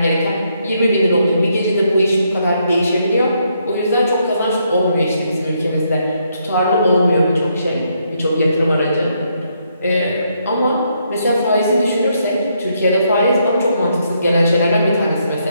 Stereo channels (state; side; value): inverted; both; correlation -0.75